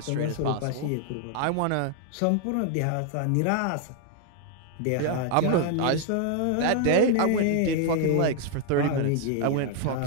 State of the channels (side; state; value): both; different; correlation 0.00